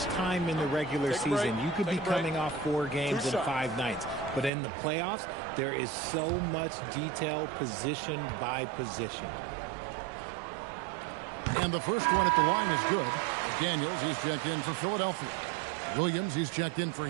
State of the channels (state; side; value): drops out; left; at 4.5 s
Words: time in the regular season. You could be coming off 4 games in 5 nights. But in the playoffs, there is so much detail position by position. And the first one at the line is good. Daniels, he's checked in for Philadelphia. Williams, he's checked in for